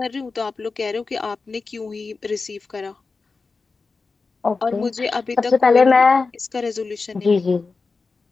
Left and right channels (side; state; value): right; quieter; 4.2 dB